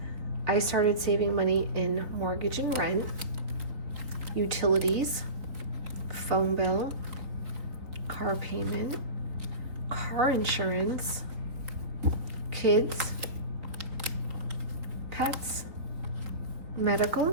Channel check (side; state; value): left; late; 3.5 ms